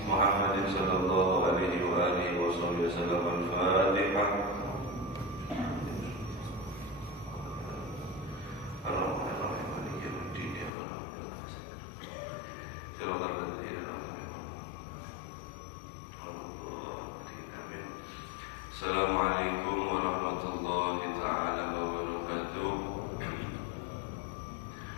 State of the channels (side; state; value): right; drops out; at 10.7 s